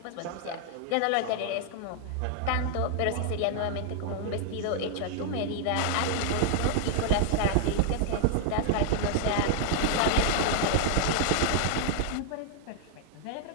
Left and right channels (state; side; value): different; both; correlation -0.01